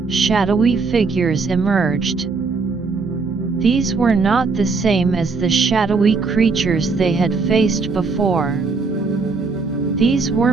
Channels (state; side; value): quieter; left; 4.4 dB